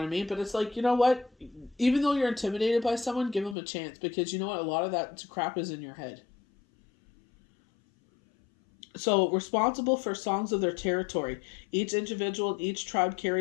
I mean? But it's like, you know what? Even though you're intimidated by someone, give them a chance. Because you know what? A lot of that crap is in your head. So, responsible for songs of their territory. Each individual, each tribe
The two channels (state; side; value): drops out; right; at 3.6 s